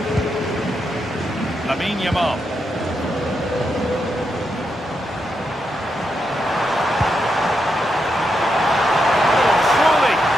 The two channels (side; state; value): both; normal; correlation 0.83